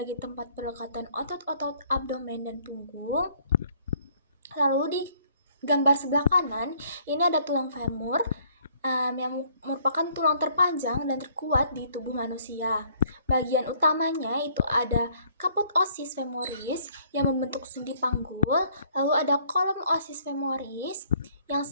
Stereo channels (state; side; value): inverted; both; correlation -0.62